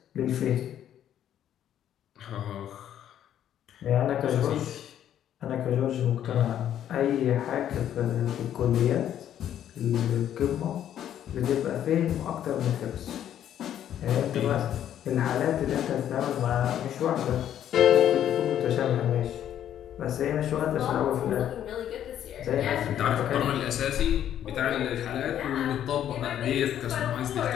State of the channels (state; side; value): quieter; right; 10.6 dB